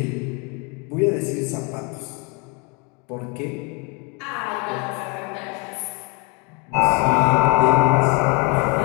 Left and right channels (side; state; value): right; quieter; 30.7 dB